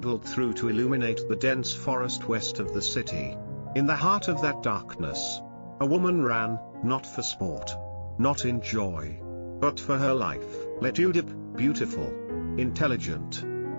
through to illuminate the dense forest west of the city. In the heart of that darkness, a woman ran, not for sport, not in joy, but for her life. Lytudiep, beautiful, intelligent,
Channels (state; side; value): inverted; both; correlation -1.00